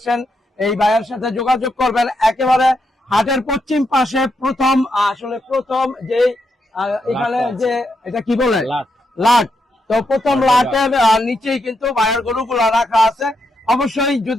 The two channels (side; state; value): both; normal; correlation 0.81